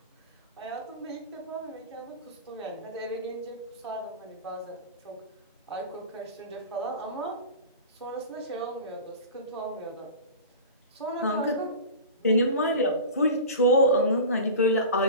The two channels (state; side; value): inverted; both; correlation -0.32